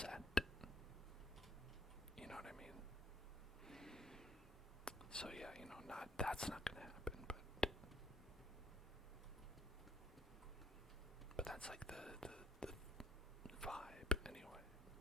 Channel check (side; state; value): both; normal; correlation 0.63